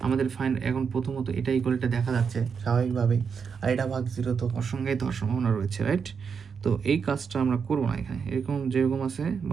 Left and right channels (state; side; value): quieter; left; 6.2 dB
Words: আমাদের ফাইন এখন প্রথমত এটা ইকুয়ালটা দেখা যাচ্ছে স্বাভাবিকভাবেই, আর এটা ভাগ 0 তো অসংজ্ঞায়িত হওয়ার সম্ভাবনা রয়েছে, রাইট? তো এই কাজটা আমরা করবো না এখানে, এরকম যেরকম আছে